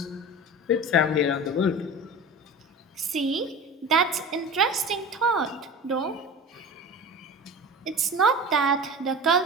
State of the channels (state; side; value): normal; both; correlation 0.34